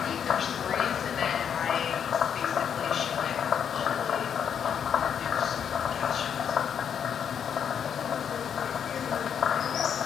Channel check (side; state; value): right; quieter; 8.0 dB